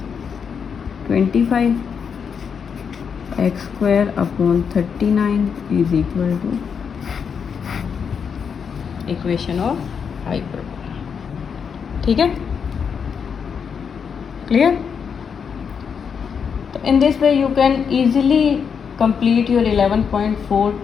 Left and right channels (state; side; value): quieter; right; 6.6 dB